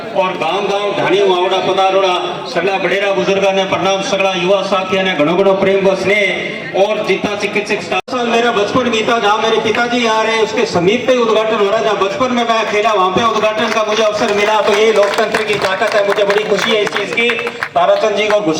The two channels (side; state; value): both; identical; correlation 1.00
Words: और गांव ढाणी वावड़ा पधारोड़ा सगला बड़ेरा बुजुर्ग ने प्रणाम, सगला युवा साथी ने घणो घणो प्रेम व स्नेह और जितना चिकित्सक मेरा बचपन बीता जहाँ मेरे पिताजी आ रहे उसके समीप पे उद्घाटन हो रहा, जहाँ बचपन में मैं खेला वहाँ पे उद्घाटन का मुझे अवसर मिला। तो ये लोकतंत्र की ताकत है, मुझे बड़ी खुशी है इस चीज की। ताराचंद जी को